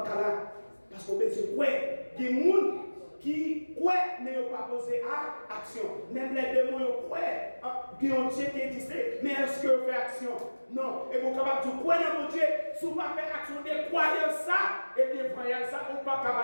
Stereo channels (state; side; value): inverted; both; correlation -1.00